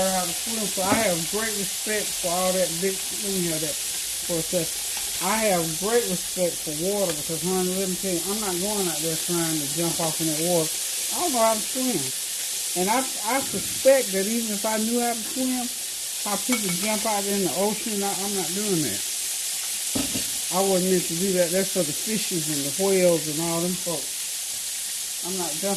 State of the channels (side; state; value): both; identical; correlation 1.00